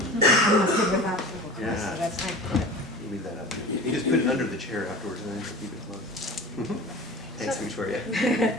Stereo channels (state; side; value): normal; both; correlation 0.36